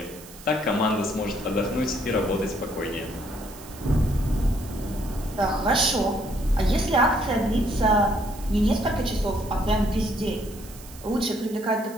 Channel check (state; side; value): noise; right; hiss, 19 dB below the sound